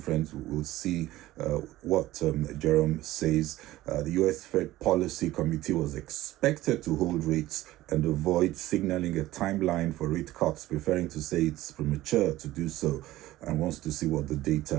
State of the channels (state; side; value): quieter; left; 16.3 dB